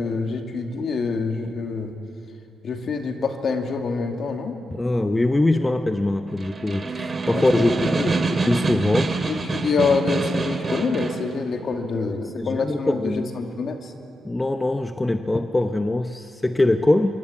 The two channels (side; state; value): both; normal; correlation 0.90